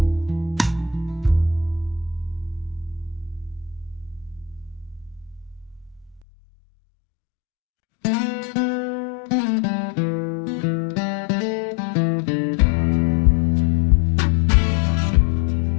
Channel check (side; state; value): right; drops out; at 6.2 s